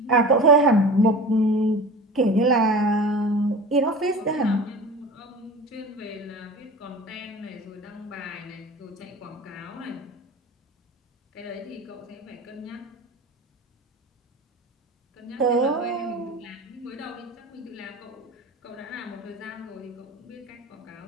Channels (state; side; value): normal; both; correlation 0.36